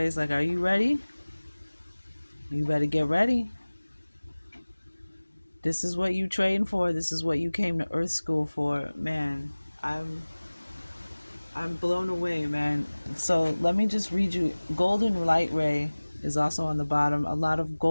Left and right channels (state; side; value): inverted; both; correlation -1.00